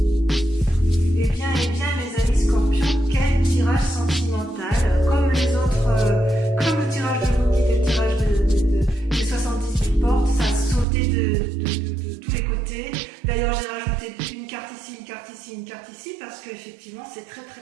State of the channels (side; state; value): left; drops out; at 10.9 s